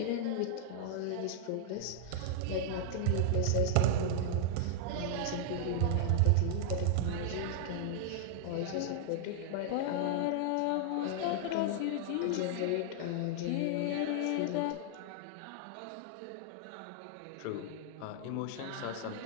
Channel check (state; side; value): different; both; correlation -0.01